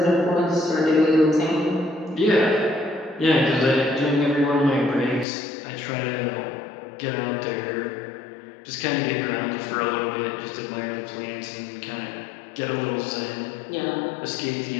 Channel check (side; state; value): right; drops out; at 5.2 s